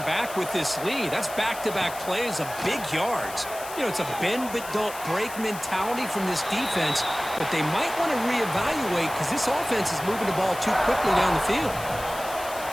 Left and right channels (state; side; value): noise; left; hiss, 13 dB below the sound